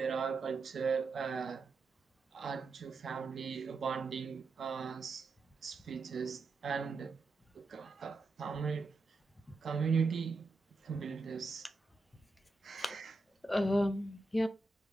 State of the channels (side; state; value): left; quieter; 3.4 dB